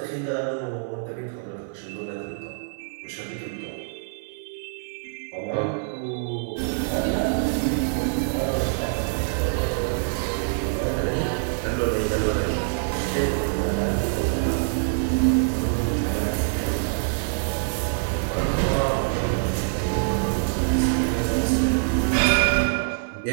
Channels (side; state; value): left; silent; 57 dB below the other